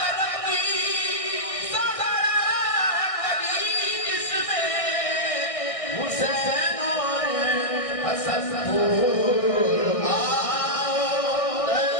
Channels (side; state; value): right; late; 1.6 ms